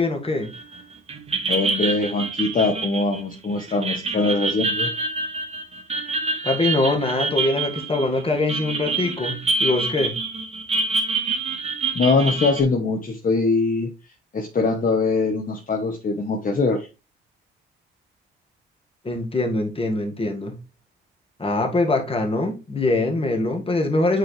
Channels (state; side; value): normal; both; correlation 0.49